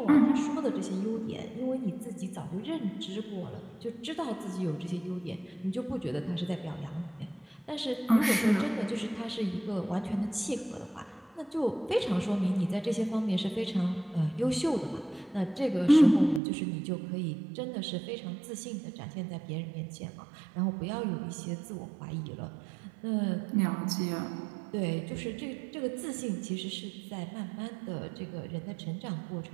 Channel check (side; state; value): left; drops out; at 16.4 s